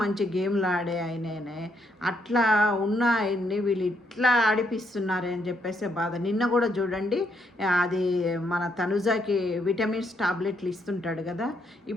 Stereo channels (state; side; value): normal; both; correlation 0.74